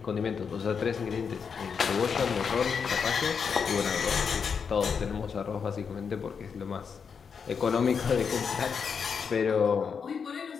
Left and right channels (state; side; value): quieter; right; 6.2 dB